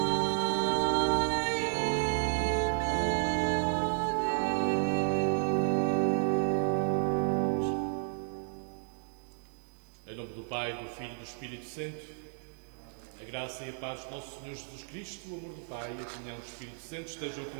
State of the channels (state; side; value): silent; left; 56 dB below the other